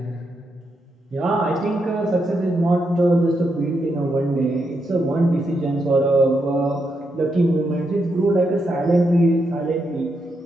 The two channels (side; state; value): both; normal; correlation 0.82